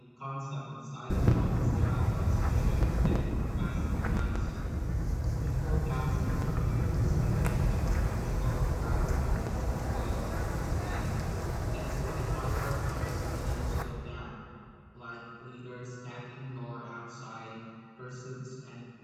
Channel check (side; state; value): both; identical; correlation 1.00